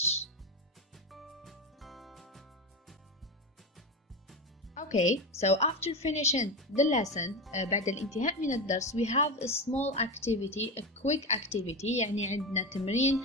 Okay, so after finishing the lesson, بعد الانتهاء من الدرس, we have a small activity, a quick activity, يعني عندنا تمرين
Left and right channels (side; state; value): both; normal; correlation 0.18